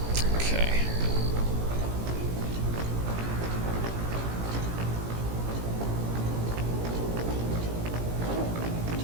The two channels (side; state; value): left; late; 17 ms